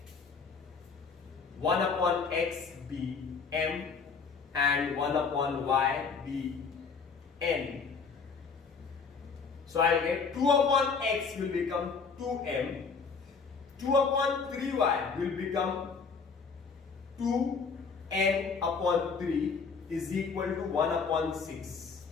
1 upon x be m and 1 upon y be n. So I'll get 2 upon x will become 2m, 2 upon 3y will become 2n upon 3 is equal to 1 upon 6.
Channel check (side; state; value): right; quieter; 5.2 dB